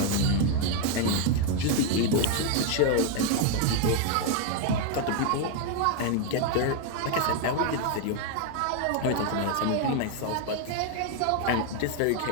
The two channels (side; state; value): both; different; correlation 0.01